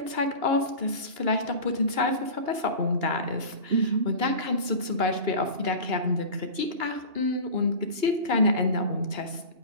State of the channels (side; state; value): left; late; 2.8 ms